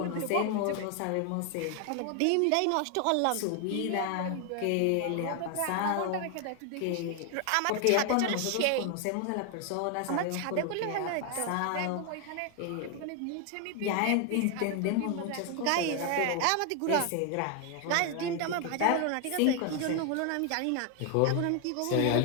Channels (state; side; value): different; both; correlation 0.01